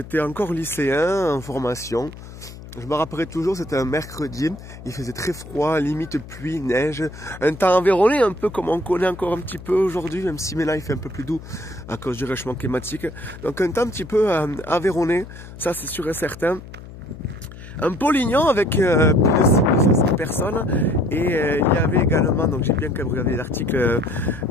encore lycéen en formation. Je me rappellerai toujours, c'était un mercredi. Il faisait très froid, limite pluie, neige. Un temps environné, un peu comme on connaît encore un petit peu aujourd'hui, même si maintenant il fait un peu plus doux à cause du réchauffement climatique. Donc un temps un petit peu environné, ça c'est sûr et certain. Un Pau-Lyon avec plus de 500 personnes et il y avait également, donc j'ai bien quand même regardé l'article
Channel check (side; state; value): left; noise; hum, 15 dB below the sound